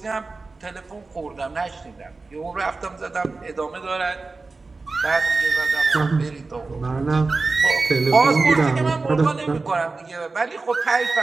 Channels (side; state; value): left; quieter; 3.8 dB